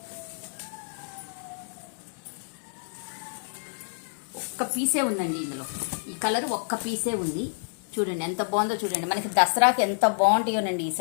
ఒక్క పీసే ఉందండి ఇందులో. ఈ కలర్ ఒక్క పీసే ఉంది. చూడండి ఎంత బాగుందో చూడండి. మనకి దసరాకి ఎంత బాగుంటాయోనండి ఈ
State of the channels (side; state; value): right; silent; digital silence